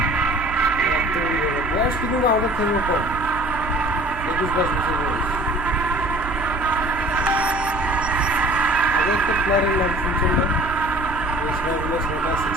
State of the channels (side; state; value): right; noise; hum, 12 dB below the sound